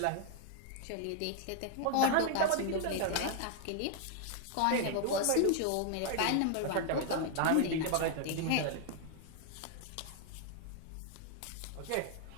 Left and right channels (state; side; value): different; both; correlation 0.00